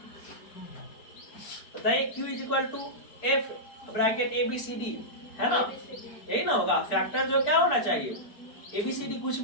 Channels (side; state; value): right; late; 4.6 ms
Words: बताइए? Q is equal to F bracket ABCD, है ना, यही ना होगा। फैक्टर जो क्या होना चाहिए? ABCD कुछ